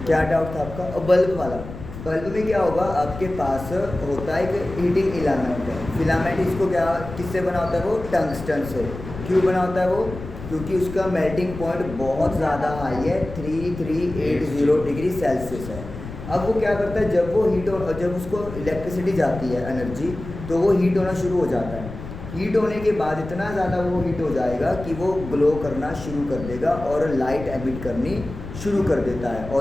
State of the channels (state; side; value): noise; left; rumble, 11 dB below the sound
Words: क्या डाउट था आपका? और बल्ब वाला, बल्ब में क्या होगा, आपके पास होता है एक हीटिंग इलामेंट है, फिलामेंट इसको क्या किससे बना होता है, वो टंगस्टन से। क्यों बना होता है वो? क्योंकि उसका मेल्टिंग पॉइंट बहुत ज़्यादा हाई है, 3380 डिग्री सेल्सियस है। अब वो क्या करता है, जब वो हीट हो, जब उसको इलेक्ट्रिसिटी जाती है एनर्जी, तो वो हीट होना शुरू हो जाता है। हीट होने के बाद इतना ज़्यादा वो हीट हो जाएगा कि वो ग्लो करना शुरू कर देगा और लाइट एमिट करनी शुरू कर देता है,